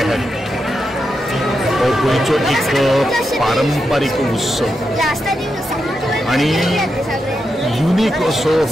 हो गोंयचो एक पारंपारीक उत्सव आणि युनिक असो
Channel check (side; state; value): both; normal; correlation 0.86